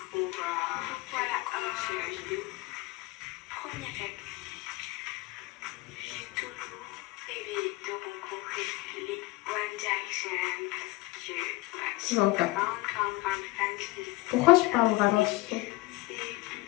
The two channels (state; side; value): quieter; right; 21.2 dB